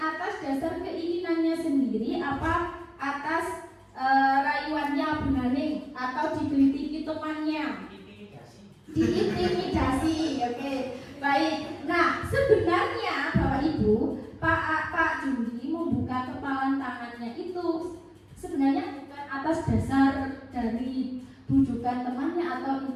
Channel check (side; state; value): both; identical; correlation 1.00